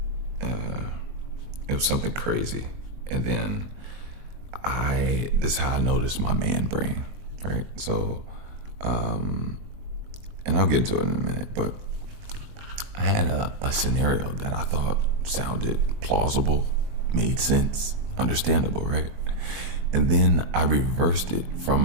It was something crazy, and then this is how I noticed my man brain, right? So, and I'll get into it in a minute, but I had a scenario that I thought sounded plausible, made sense, understandable, right? And then I reversed it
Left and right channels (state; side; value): late; left; 21 ms